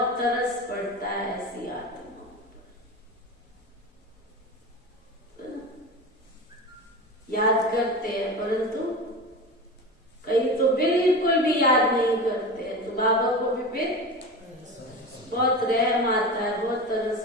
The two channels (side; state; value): both; normal; correlation 0.28